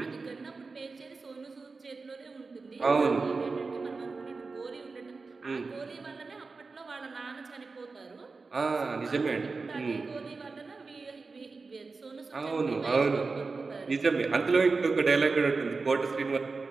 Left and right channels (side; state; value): left; quieter; 4.1 dB